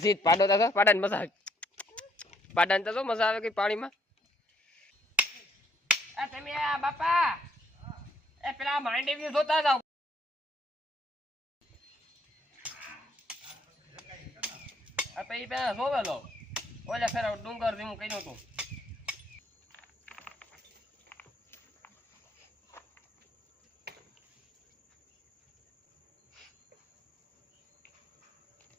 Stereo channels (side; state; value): both; normal; correlation 0.69